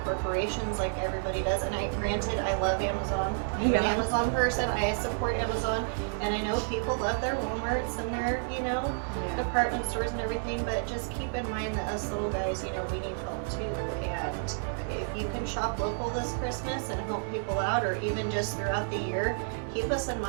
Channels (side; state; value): left; silent; digital silence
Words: corporations like everybody does. And granted, I love Amazon. I'm an Amazon person. I support Amazon. And I know people love their Walmarts and their, you know, department stores and everything. But just keep in mind that us little guys, you know, we need help too. And if you can shop local this Christmas and help people out, or even just throughout the year, keep us in